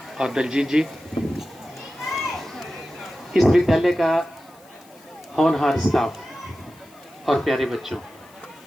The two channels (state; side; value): noise; left; hiss, 28 dB below the sound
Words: और दलजीत जी, इस विद्यालय का होनहार स्टाफ और प्यारे बच्चों।